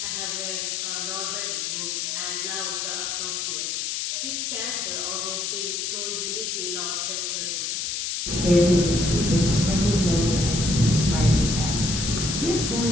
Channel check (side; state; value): left; noise; hiss, 2 dB below the sound